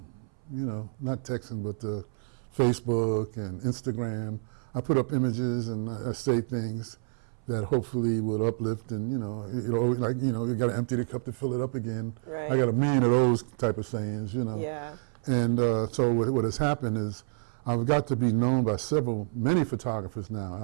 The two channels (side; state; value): left; silent; 59 dB below the other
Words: you know, not texting, but the Facebook and Instagram. I put up images and I say things that hopefully will uplift, and you know, like, you know, you got to empty the cup to fill it up again. Right. I got a million of those type of sayings, you know. Yeah. And so what has happened is I've got to be known by many photographers now